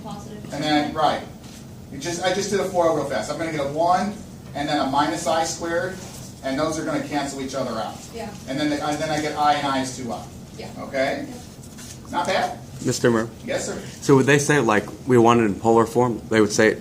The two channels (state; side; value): identical; both; correlation 1.00